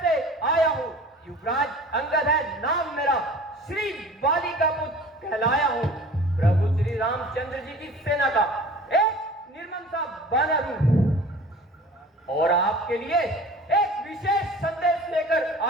से आया हूँ। युवराज अंगद है नाम मेरा, श्री बाली का पुत्र कहलाया हूँ। प्रभु श्री रामचंद्र जी की सेना का एक निर्मम सा बानर हूँ और आपके लिए एक विशेष संदेश लेकर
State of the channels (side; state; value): both; normal; correlation 0.43